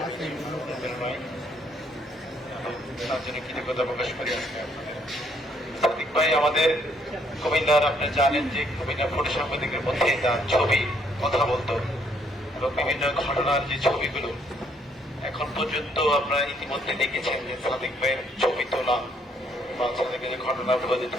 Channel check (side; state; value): both; normal; correlation 0.68